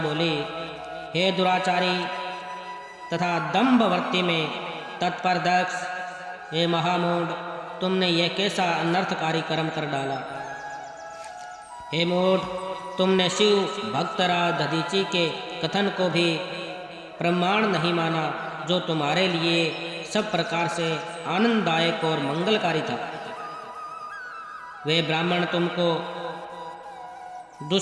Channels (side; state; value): both; identical; correlation 1.00